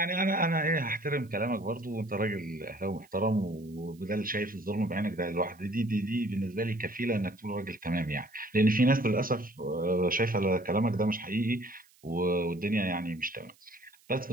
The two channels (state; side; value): noise; right; hiss, 30 dB below the sound